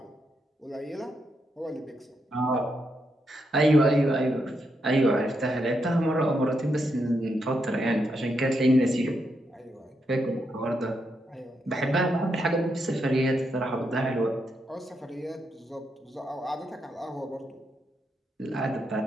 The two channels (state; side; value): normal; both; correlation 0.81